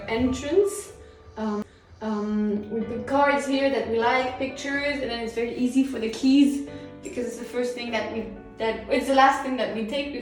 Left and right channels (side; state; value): both; identical; correlation 1.00